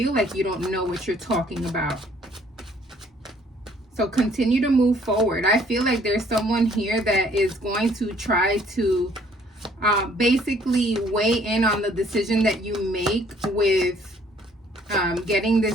like you don't know what you're talking about. So continue to move forward. I feel like there's someone here that is going to try to basically weigh in on the decision that you make with getting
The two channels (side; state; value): both; normal; correlation 0.61